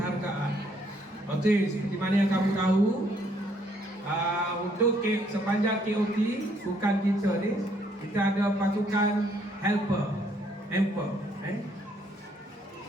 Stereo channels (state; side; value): normal; both; correlation 0.68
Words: Okey, seperti mana yang kamu tahu, untuk sepanjang KOT bukan kita ni, kita ada pasukan helper.